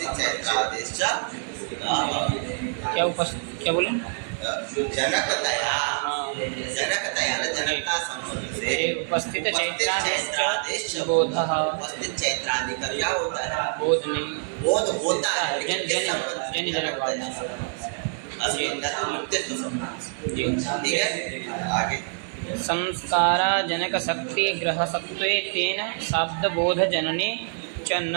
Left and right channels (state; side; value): silent; left; 61 dB below the other